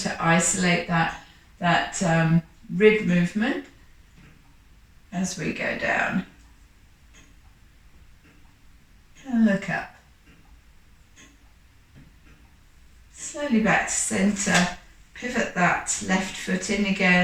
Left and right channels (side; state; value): both; identical; correlation 1.00